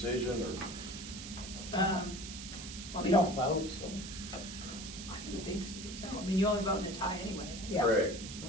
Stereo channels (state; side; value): noise; right; hiss, 10 dB below the sound